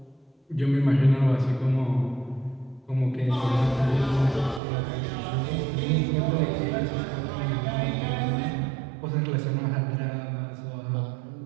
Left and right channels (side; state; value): left; drops out; at 4.6 s